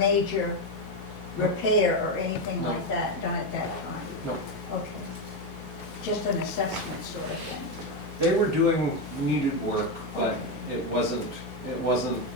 repair or anything No. like that done at that time? No. Okay. Just an assessment sort of thing. They were doing needed work, but it wasn't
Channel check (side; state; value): both; normal; correlation 0.09